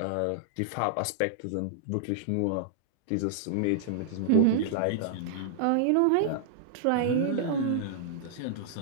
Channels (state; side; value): different; both; correlation -0.01